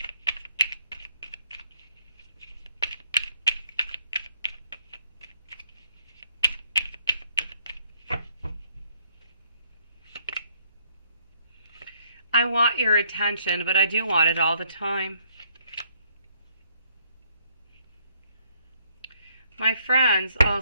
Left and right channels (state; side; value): inverted; both; correlation -0.69